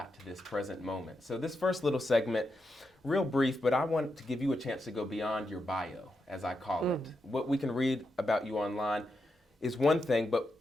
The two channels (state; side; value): normal; both; correlation 0.85